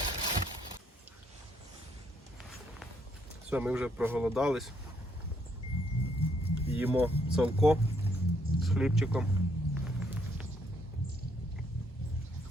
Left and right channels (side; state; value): both; normal; correlation 0.71